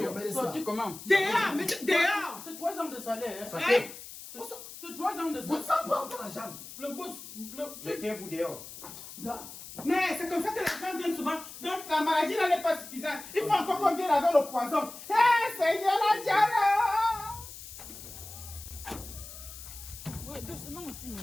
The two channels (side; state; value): left; noise; hiss, 14 dB below the sound